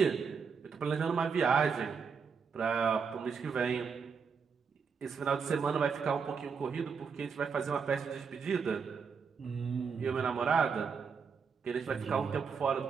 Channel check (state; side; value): quieter; left; 5.9 dB